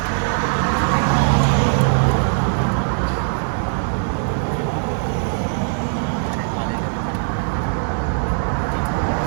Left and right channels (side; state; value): left; silent; 58 dB below the other